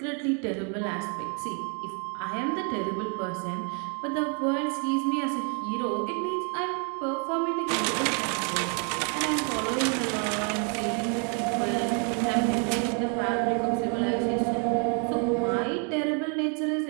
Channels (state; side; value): quieter; left; 39.1 dB